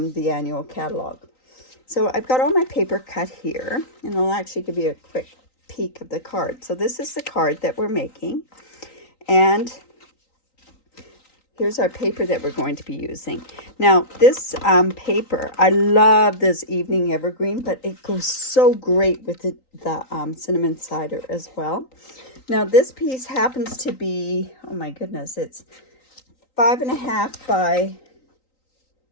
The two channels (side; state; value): right; late; 3.9 ms